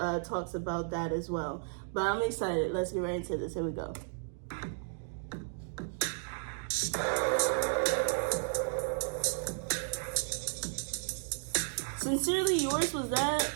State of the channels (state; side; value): silent; left; digital silence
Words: about that as well. But I'm excited. Let's get right into this. Here we go. Sincerely Yours, was that